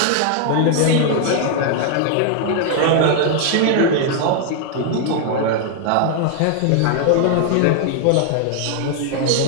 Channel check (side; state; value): both; different; correlation 0.00